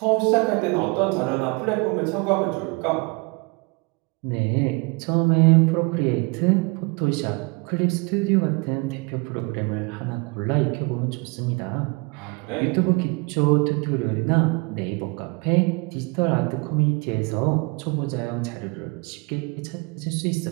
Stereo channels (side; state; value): left; quieter; 29.4 dB